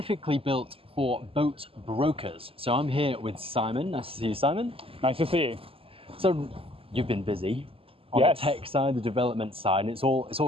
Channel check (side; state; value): left; late; 0.27 ms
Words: built for boat brokers. So I'm here with Simon. Nice to see you, Simon. Nice to see you. So you've been busy on Yes. the tech side, the development side, and it's all